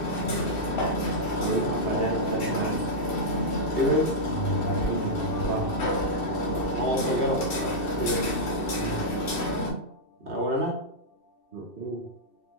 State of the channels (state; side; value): late; right; 2.7 ms